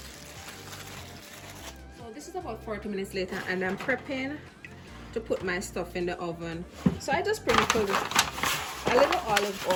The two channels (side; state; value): both; identical; correlation 1.00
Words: So this is about 40 minutes later, and I'm prepping to put my stuff in the oven. So I just sprinkled a little olive